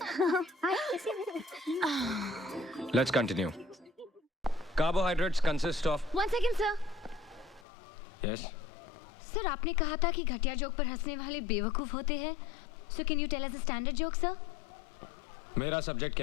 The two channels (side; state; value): right; drops out; at 7.7 s